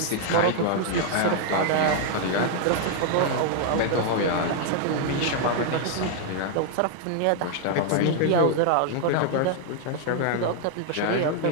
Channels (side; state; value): both; different; correlation 0.00